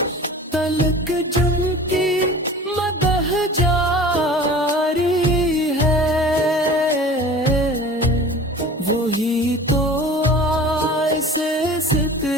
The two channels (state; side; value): normal; both; correlation 0.41